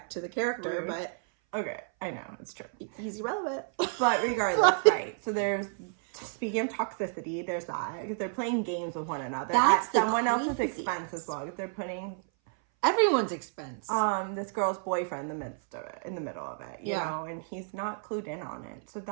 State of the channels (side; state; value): left; silent; 57 dB below the other